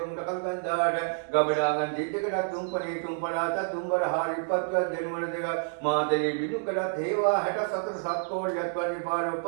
කල්ගන්දාට ගබඩාගන් ජිද්දකට තුම්පනේ තුම්පලාට තුම්බර හාරිපත්වත් දෙනුවර දෙක මාතේ බිනුකඩත් හේවා 64 සත්කෝඩයක් වගේ පාර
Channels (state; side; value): silent; left; 59 dB below the other